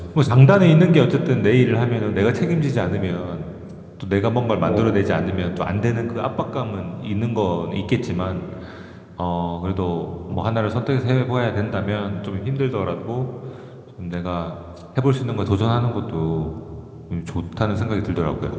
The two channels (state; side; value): identical; both; correlation 1.00